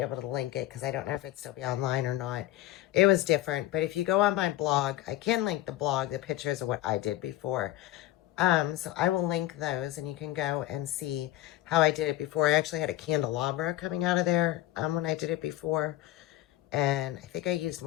to link it because I don't know if it'd still be online or not. It was different, but if you go on my blog, I can link the blog, the pictures of what I did before. So I will link those and you can go and see how I did it before. I actually had a candelabra coming out of there when I did it before. And I think I used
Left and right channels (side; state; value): right; quieter; 15.7 dB